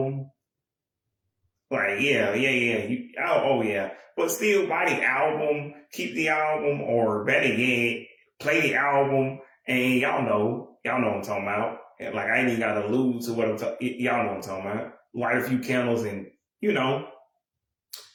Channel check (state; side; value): identical; both; correlation 1.00